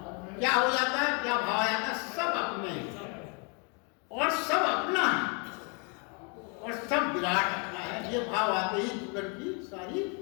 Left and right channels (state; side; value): quieter; right; 35.3 dB